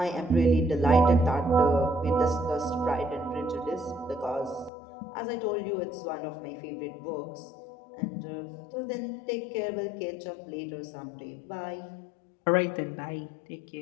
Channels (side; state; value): right; drops out; at 4.7 s